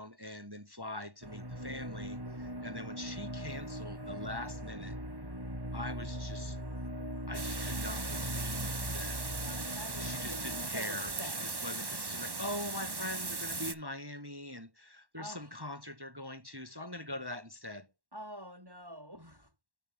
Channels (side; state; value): left; late; 1.1 ms